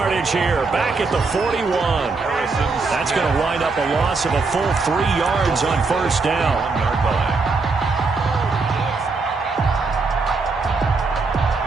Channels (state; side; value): quieter; left; 4.1 dB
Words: here. Back at the 41. That's going to wind up a loss of a full 3 yards on first down.